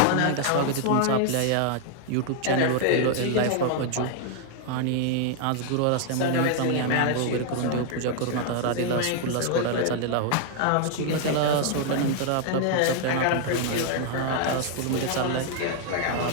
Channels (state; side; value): different; both; correlation 0.00